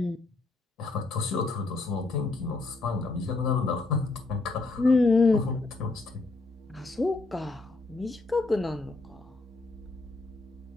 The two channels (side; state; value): right; quieter; 3.4 dB